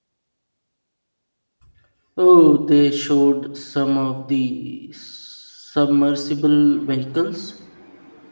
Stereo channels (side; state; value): both; inverted; correlation -1.00